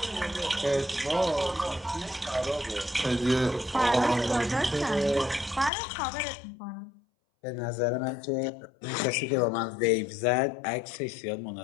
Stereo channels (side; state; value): right; drops out; at 5.7 s